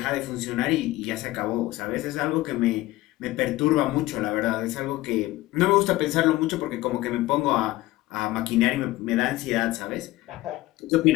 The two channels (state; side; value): quieter; right; 17.7 dB